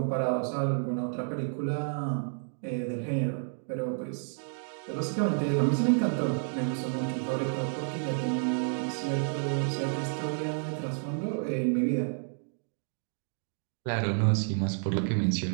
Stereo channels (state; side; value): silent; left; digital silence